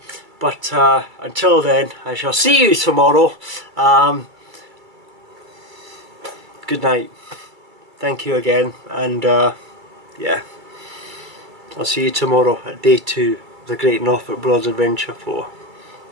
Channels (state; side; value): late; left; 2.3 ms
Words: But until then, I shall see you tomorrow. Good night. Thank you again, and yeah, I'll see you tomorrow at day 2 of the Great Norfolk Broads Adventure 4.